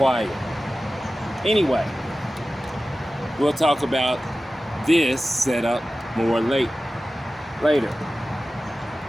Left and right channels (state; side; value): normal; both; correlation 0.95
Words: Anyway, we'll talk about this setup more later.